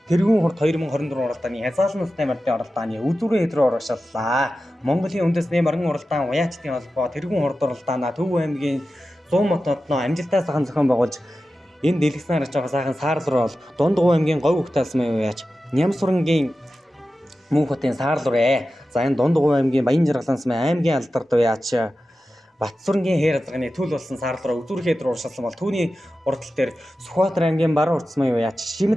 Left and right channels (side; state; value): both; normal; correlation 0.93